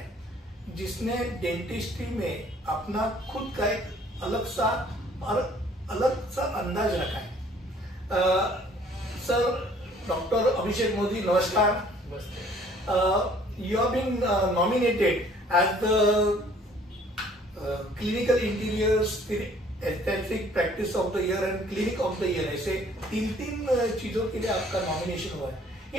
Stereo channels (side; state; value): both; normal; correlation 0.57